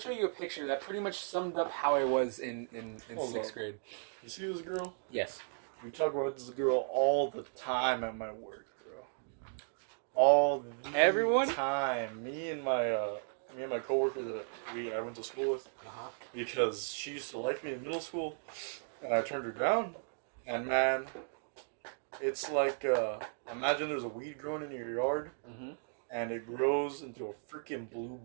show you a picture that pretty much summed up how I was in Hold 6th on. grade. You see this girl? Yes. We talk about this girl all the time at my work, bro. All the Everyone? time. Me and my coworker that I went to school with, because she used to like me in middle school, and I turned her down. And man, it's like imagine there's a weed growing in your yard, and it grows into a freaking blue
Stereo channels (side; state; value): left; silent; digital silence